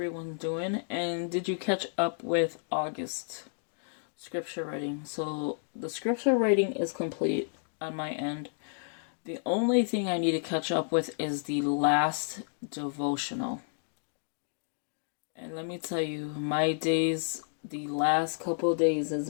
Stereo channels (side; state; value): right; silent; digital silence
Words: doing? And did you catch up with August scripture writing? So the scripture writing is complete on my end. The only thing I need to catch up with is the last devotional. And let me tell you, my days, the last couple of days has